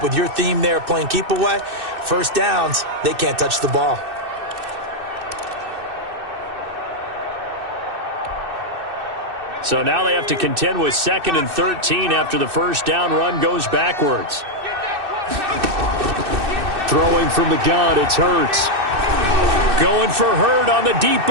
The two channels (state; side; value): late; left; 2.6 ms